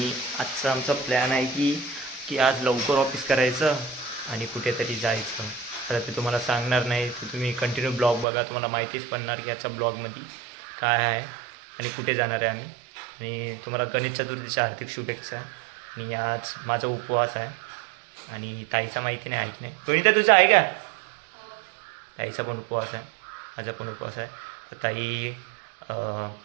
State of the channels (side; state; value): left; drops out; at 8.2 s